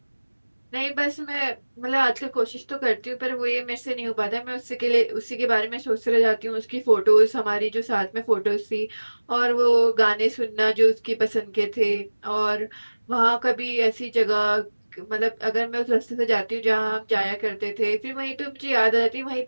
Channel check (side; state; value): both; inverted; correlation -1.00